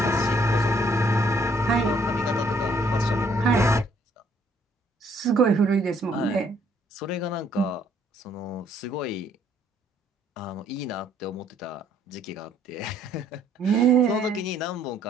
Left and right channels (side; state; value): both; normal; correlation 0.65